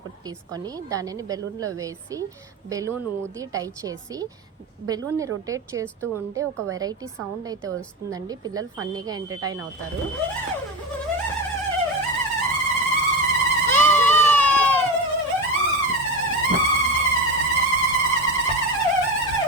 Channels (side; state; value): both; normal; correlation 0.20